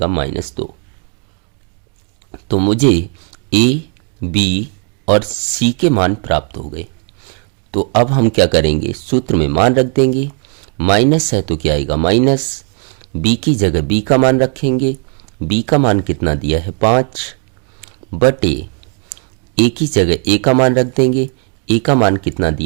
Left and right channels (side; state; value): left; quieter; 38.2 dB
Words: -2। तो मुझे a, b और c के मान प्राप्त हो गए। तो अब हम क्या करेंगे, सूत्र में मान रख देंगे। माइनस है तो क्या आएगा, माइनस। b की जगह b का मान रखेंगे। b का मान कितना दिया है, 5, बटे a की जगह a का मान रख देंगे। a का मान कितना